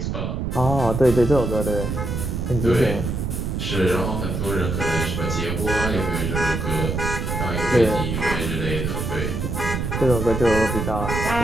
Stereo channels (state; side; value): noise; right; rumble, 2 dB below the sound